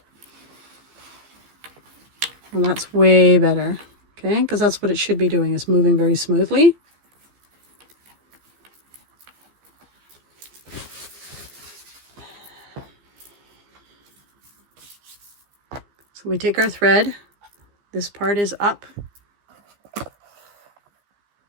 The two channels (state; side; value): late; left; 15 ms